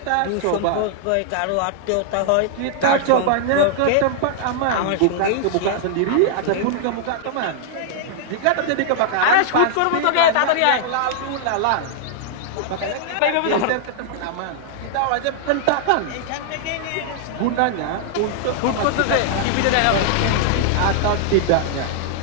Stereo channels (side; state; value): both; different; correlation -0.01